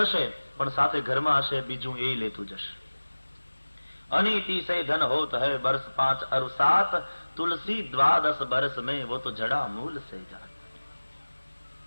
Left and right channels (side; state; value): both; inverted; correlation -1.00